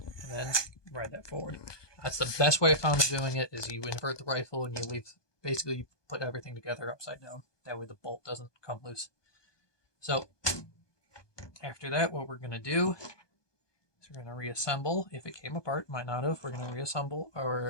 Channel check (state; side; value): late; right; 1.2 ms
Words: And then ride that forward. That's the best way I found of doing it, is you invert the rifle and you leave, basically you put everything together upside down. That way the bolt doesn't come loose. So after that, what we're going to do is we're going to reassemble. If it came apart, might not have, we're going to reassemble